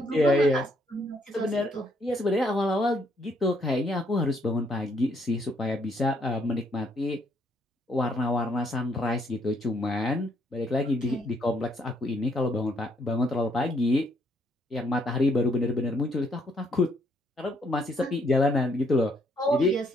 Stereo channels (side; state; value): both; normal; correlation 0.70